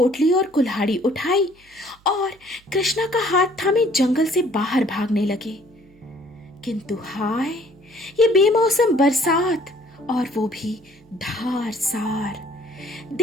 और कुल्हाड़ी उठाई और कृष्णा का हाथ थामे जंगल से बाहर भागने लगे। किंतु हाय, ये बेमौसम बरसात और वो भी धारसार।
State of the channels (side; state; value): right; noise; hum, 29 dB below the sound